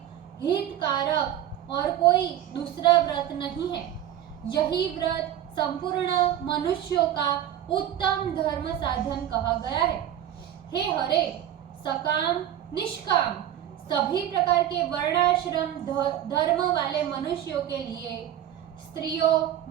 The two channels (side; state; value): left; quieter; 11.2 dB